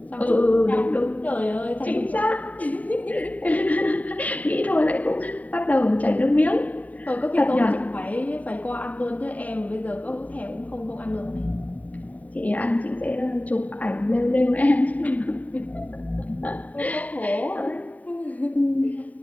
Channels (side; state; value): right; late; 0.071 ms